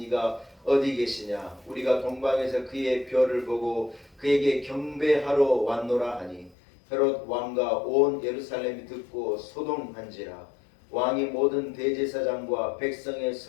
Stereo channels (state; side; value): drops out; right; at 6.6 s